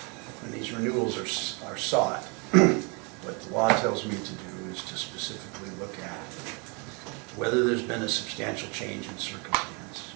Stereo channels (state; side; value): quieter; left; 32.5 dB